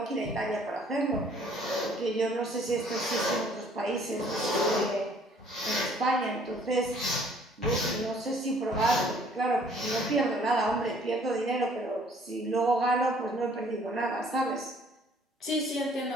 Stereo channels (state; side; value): normal; both; correlation 0.59